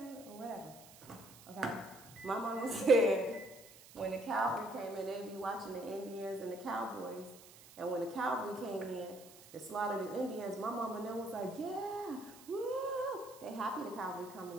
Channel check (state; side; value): noise; right; hiss, 20 dB below the sound